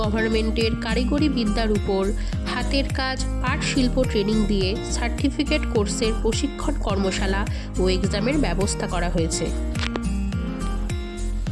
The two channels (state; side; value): identical; both; correlation 1.00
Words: গভর্নমেন্টের কারিগরি বিদ্যার উপর হাতের কাজ পাট শিল্প ট্রেনিং দিয়ে সার্টিফিকেট কোর্সের প্রশিক্ষণ কর্মশালা ও এক্সামের ব্যবস্থা করা হয়েছে।